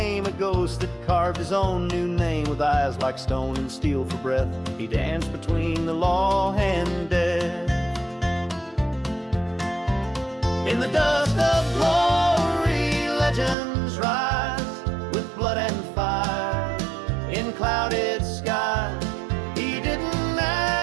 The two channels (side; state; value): left; drops out; at 13.6 s